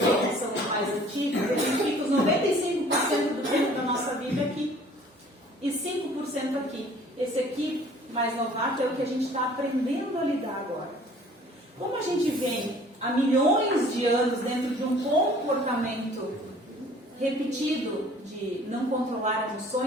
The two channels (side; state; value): both; normal; correlation 0.52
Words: os mais antigos, eles ficam 95% do tempo da nossa vida aqui e 5% aqui. Esse aqui, mais novato, é o que a gente está aprendendo a lidar agora. Como a gente vem há milhões de anos dentro de um comportamento repetido de não controlar